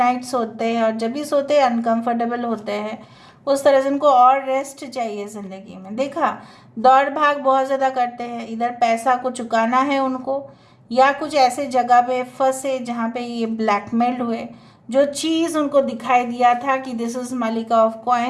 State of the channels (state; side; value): identical; both; correlation 1.00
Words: सोते हैं और जब भी सोते हैं अनकंफर्टेबल होते हैं। उस तरह से उनको और रेस्ट चाहिए ज़िंदगी में। देखा, दौड़ भाग बहुत ज़्यादा करते हैं, इधर पैसा को चुकाना है उनको या कुछ ऐसे जगह पे फंसे जहाँ पे ये ब्लैकमेल्ड हुए। जो चीज़ उनको दिखाई दिया था कि दिस इज़ मलिका of